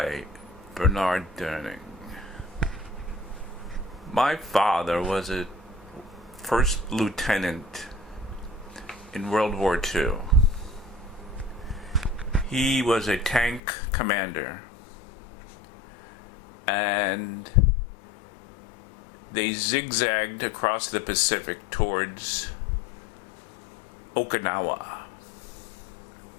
Durning. My father was a First Lieutenant in World War II. He was a tank commander, and they zigzagged across the Pacific towards Okinawa.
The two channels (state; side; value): drops out; right; at 13.6 s